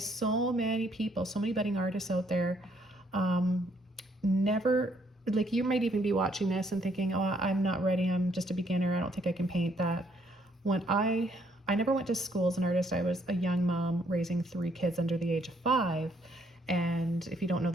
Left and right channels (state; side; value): normal; both; correlation 0.69